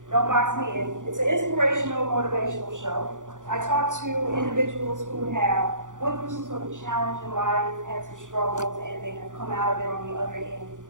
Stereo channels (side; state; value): left; late; 0.87 ms